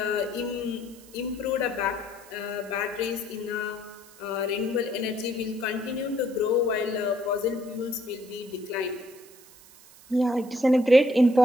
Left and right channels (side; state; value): right; noise; hiss, 22 dB below the sound